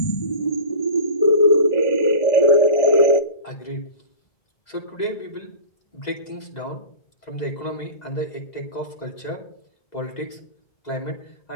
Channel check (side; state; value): right; late; 2.0 ms